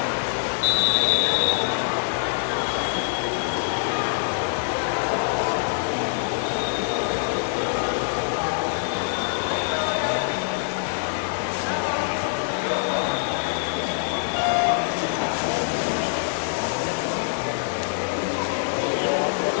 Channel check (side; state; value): right; silent; digital silence